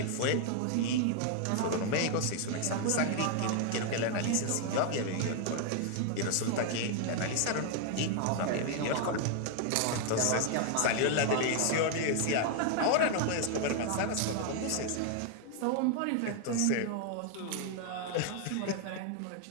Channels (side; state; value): both; different; correlation 0.00